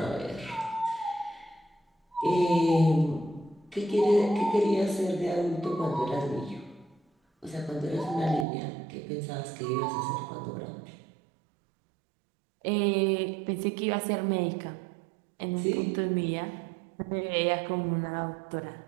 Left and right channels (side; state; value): left; drops out; at 8.5 s